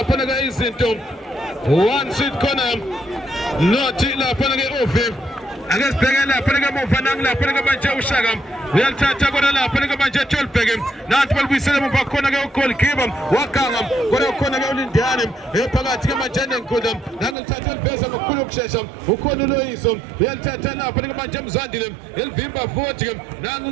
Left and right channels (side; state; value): left; drops out; at 17.4 s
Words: ke izinto one seat corner nothi lapha ke Ove akasibheke lapha ke muva lapha ke manje uShaka uyalithatha kodwa lapha ke manje Tolbeke nathi balibuyisela muva khona ke ugoalkeeper wakanga kodwa khona ke uLindani phakathi ke manje nenkundla nangelithatha eliveza ngokukhulu ukushesha ukhona uLoyiso uyalithatha lapha ke manje Mzandile elivimba futhi